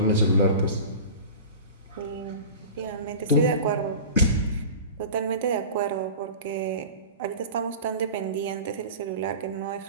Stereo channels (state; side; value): inverted; both; correlation -0.34